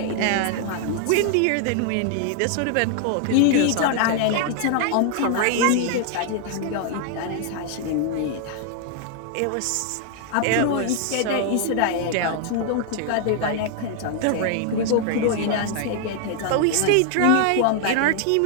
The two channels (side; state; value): both; different; correlation 0.00